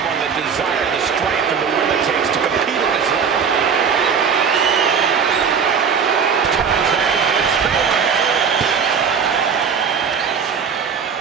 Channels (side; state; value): left; quieter; 6.5 dB